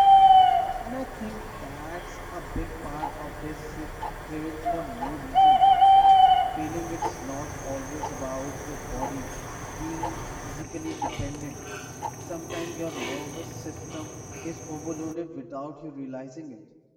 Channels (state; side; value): identical; both; correlation 1.00